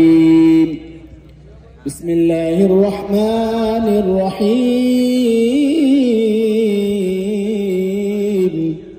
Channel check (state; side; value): identical; both; correlation 1.00